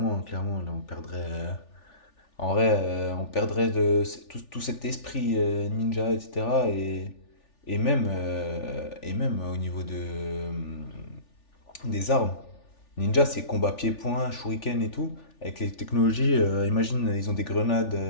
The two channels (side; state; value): right; late; 3.4 ms